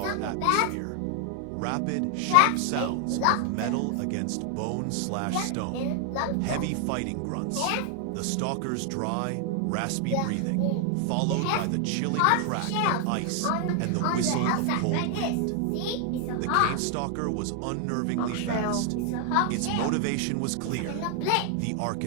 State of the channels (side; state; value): both; different; correlation 0.00